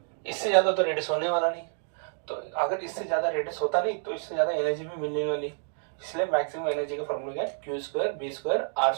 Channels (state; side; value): silent; left; digital silence